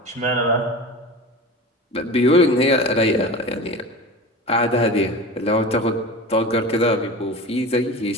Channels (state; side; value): normal; both; correlation 0.32